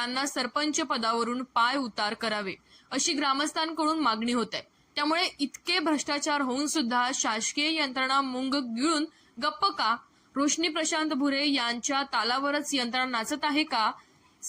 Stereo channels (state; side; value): identical; both; correlation 1.00